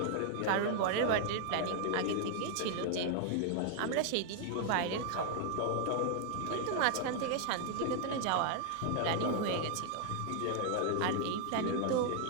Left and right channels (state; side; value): different; both; correlation 0.00